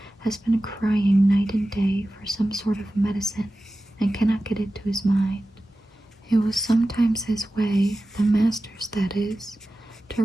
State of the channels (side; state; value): both; normal; correlation 0.95